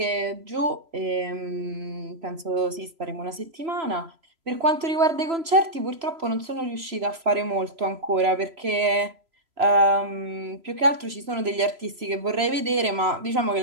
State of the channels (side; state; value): left; late; 3.0 ms